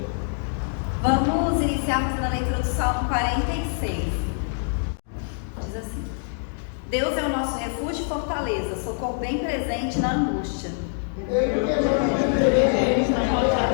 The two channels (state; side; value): silent; right; 61 dB below the other